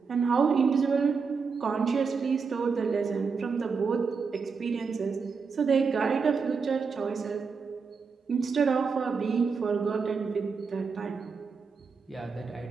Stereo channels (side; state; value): left; quieter; 5.2 dB